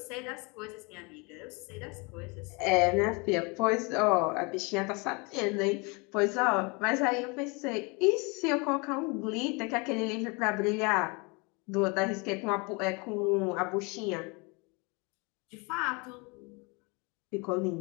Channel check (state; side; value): quieter; right; 29.6 dB